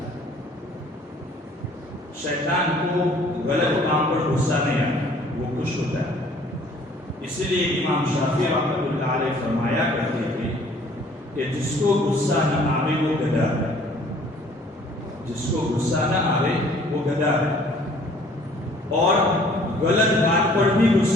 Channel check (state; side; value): normal; both; correlation 0.56